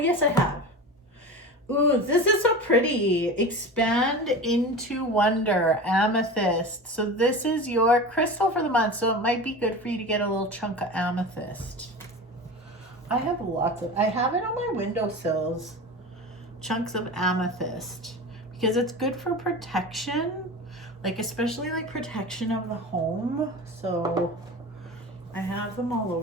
I have. Ooh, this is so pretty. Expand into Wonder, Amethyst. So this is your crystal for the month. So it might be good for you to get a little chunk of amethyst. I have I have it on my windowsills. Chunks of amethyst. Because it's good for protection. Like especially like protection of the home. So I have them all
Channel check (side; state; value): both; normal; correlation 0.31